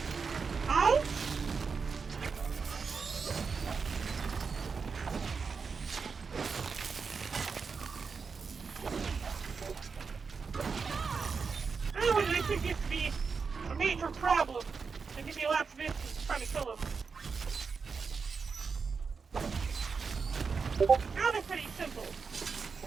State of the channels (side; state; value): left; quieter; 5.2 dB